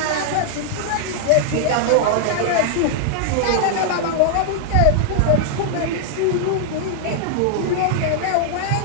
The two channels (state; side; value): different; both; correlation -0.01